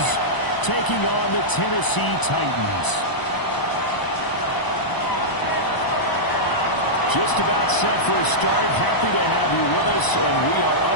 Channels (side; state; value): right; late; 1.0 ms